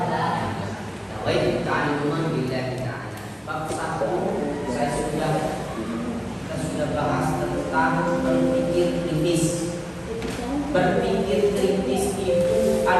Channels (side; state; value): both; identical; correlation 1.00